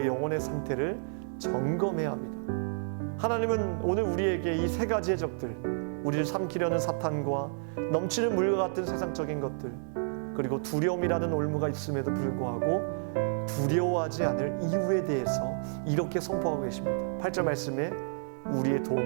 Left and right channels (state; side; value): silent; left; digital silence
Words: 영혼의 상태를 점검해야 합니다. 하나님은 오늘 우리에게 이 세 가지의 적들, 우리를 삼키려는 사탄과 넘치는 물과 같은 세상적인 것들, 그리고 두려움이라는 올무가 있음에도 불구하고 두려워하지 않을 이유에 대해서 이렇게 선포하고 계십니다. 8절 말씀에 우리의